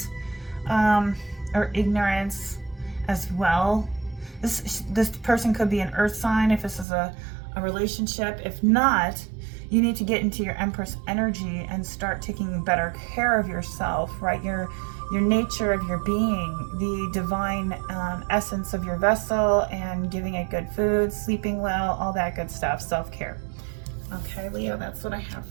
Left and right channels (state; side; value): drops out; left; at 6.9 s